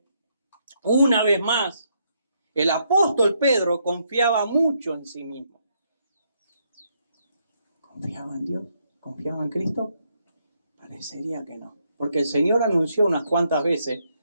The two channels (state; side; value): inverted; both; correlation -0.75